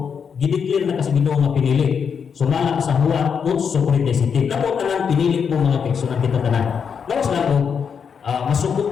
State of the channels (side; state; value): right; quieter; 6.7 dB